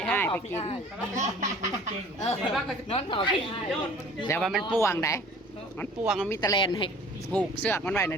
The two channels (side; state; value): both; normal; correlation 0.49